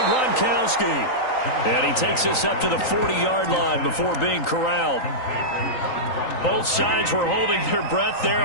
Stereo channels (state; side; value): late; right; 3.9 ms